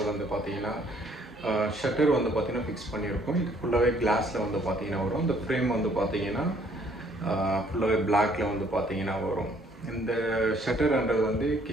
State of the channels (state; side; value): normal; both; correlation 0.63